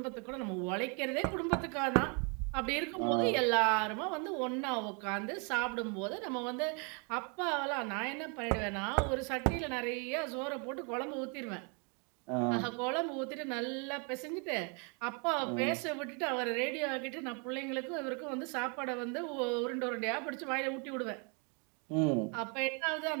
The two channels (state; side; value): quieter; left; 35.4 dB